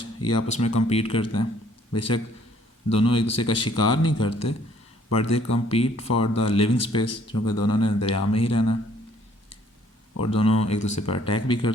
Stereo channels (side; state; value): both; normal; correlation 0.61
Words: ये आपस में कम्पीट करते हैं। बेशक दोनों एक दूसरे का शिकार नहीं करते, but they compete for the living space, क्योंकि दोनों ने दरिया में ही रहना है। और दोनों एक दूसरे पर अटैक भी